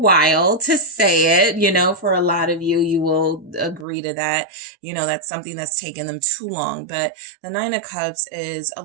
to say it, for a lot of you, you will agree to that. That's something that's taken them too long. But the Nine of Cups is a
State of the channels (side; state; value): left; drops out; at 3.9 s